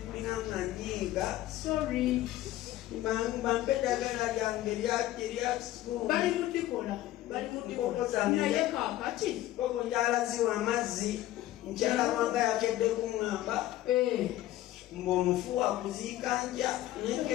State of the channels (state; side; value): quieter; right; 14.8 dB